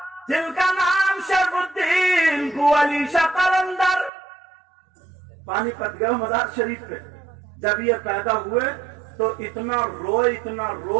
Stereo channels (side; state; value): left; drops out; at 4.1 s